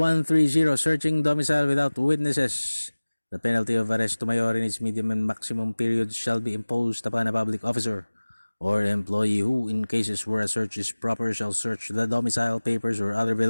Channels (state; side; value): inverted; both; correlation -1.00